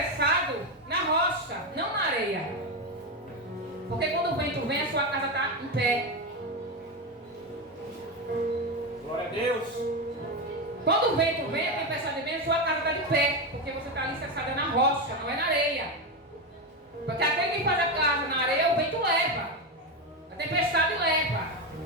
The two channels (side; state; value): both; normal; correlation 0.13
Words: na rocha, não na areia. Porque quando o vento vem, a sua casa está em pé. Glória a Deus. Quando o vento vem, a tempestade vem, a sua casa está de pé. Porque você está alicerçado na rocha, não é na areia. Porque aquele que faz a casa na areia, o vento leva. A tempestade leva.